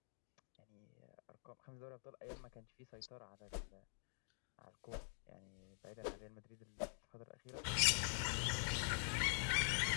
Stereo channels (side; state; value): right; silent; digital silence